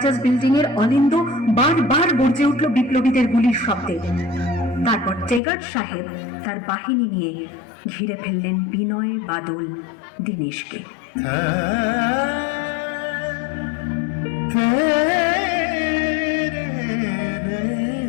বিল্ডিং এর অলিন্দ বারবার গর্জে উঠল বিপ্লবীদের গুলির শব্দে। তারপর টেগার্ড সাহেব তার বাহিনী নিয়ে ঘিরে ফেললেন বিনয়, বাদল, দীনেশকে।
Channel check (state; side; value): drops out; right; at 5.4 s